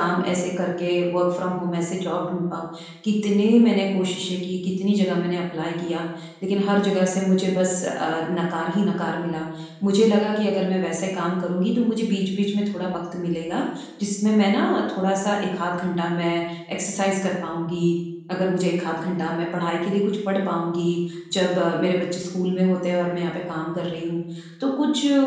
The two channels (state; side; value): identical; both; correlation 1.00